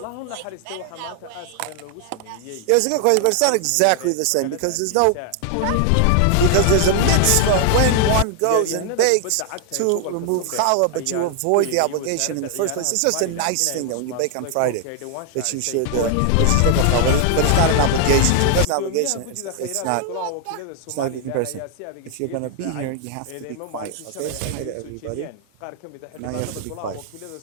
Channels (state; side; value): different; both; correlation 0.00